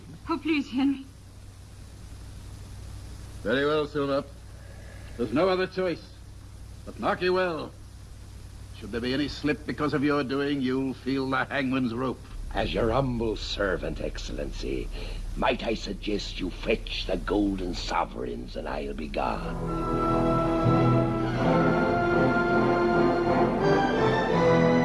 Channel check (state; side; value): identical; both; correlation 1.00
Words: Oh, please, Henry. Very well, Silver. There's no other choice. But mark you well. Should there be any slip because of your doing, you'll feel the hangman's rope. As your humble servant, Excellency, might I suggest you fetch the golden sovereigns and I'll be gone.